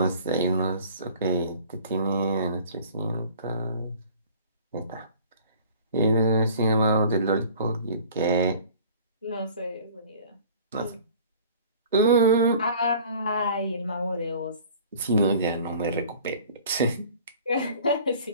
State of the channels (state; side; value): inverted; both; correlation -0.48